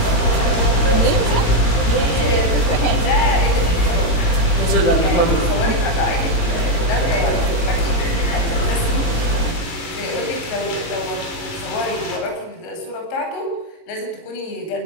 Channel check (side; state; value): right; late; 18 ms